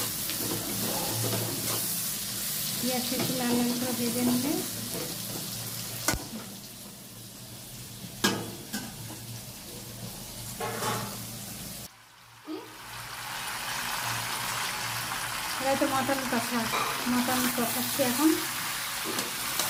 পেঁয়াজটা একটু লাল লাল করে ভেজে নিলে এবার তো মটন কষাচ্ছি এখন।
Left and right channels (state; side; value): identical; both; correlation 1.00